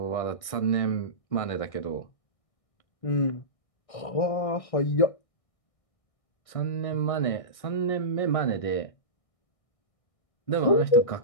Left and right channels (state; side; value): late; right; 1.6 ms